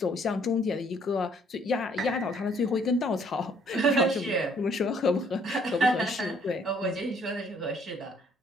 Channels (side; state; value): both; normal; correlation 0.63